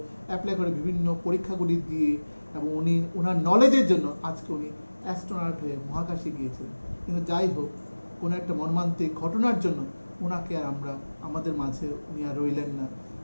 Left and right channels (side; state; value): both; inverted; correlation -1.00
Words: করে বিভিন্ন পরীক্ষাগুলি দিয়ে, এবং উনি ওনার নলেজের জন্য আজকে উনি অ্যাস্ট্রোনট হয়ে মহাকাশে গিয়েছিলেন। কিন্তু যাই হোক, কোনো একটা মর্মান্তিক ঘটনার জন্য ওনাকে আর আমাদের মাঝে উনি আর রইলেন না।